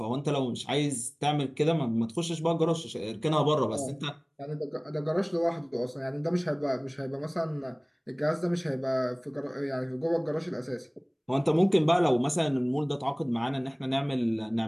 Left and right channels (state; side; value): identical; both; correlation 1.00